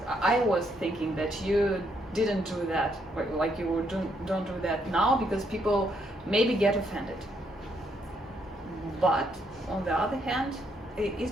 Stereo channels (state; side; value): normal; both; correlation 0.74